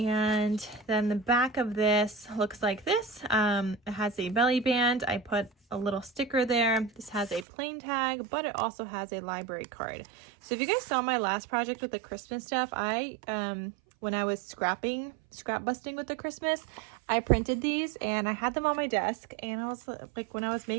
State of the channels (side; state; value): left; drops out; at 7.5 s